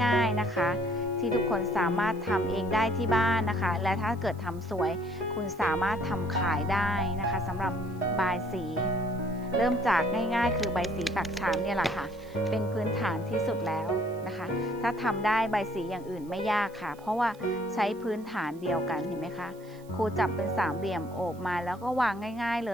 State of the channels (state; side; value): noise; right; hiss, 27 dB below the sound